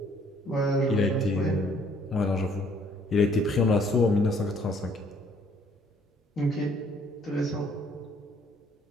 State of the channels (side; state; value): both; normal; correlation 0.62